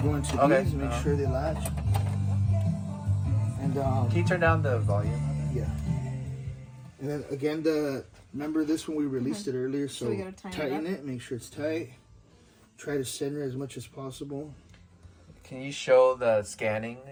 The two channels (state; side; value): identical; both; correlation 1.00